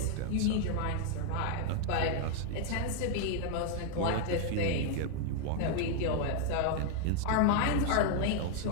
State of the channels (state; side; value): different; both; correlation 0.00